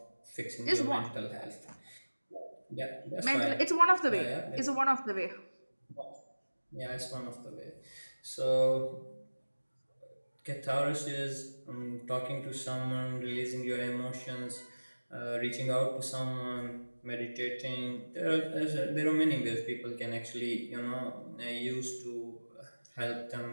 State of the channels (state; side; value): inverted; both; correlation -1.00